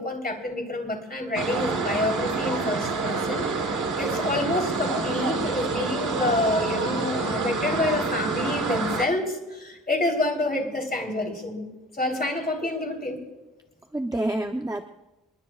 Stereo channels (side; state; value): both; normal; correlation 0.42